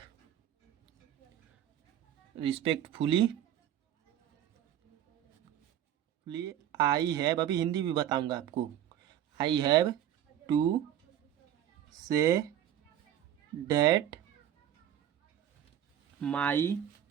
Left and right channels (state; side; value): quieter; left; 10.8 dB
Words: respectfully. आई हैव, अभी हिंदी भी बताऊंगा आपको। I have to say date my,